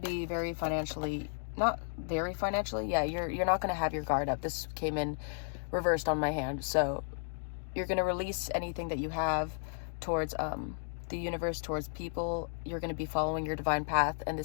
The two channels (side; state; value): right; silent; digital silence